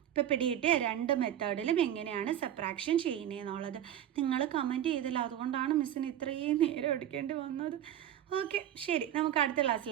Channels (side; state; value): left; quieter; 11.0 dB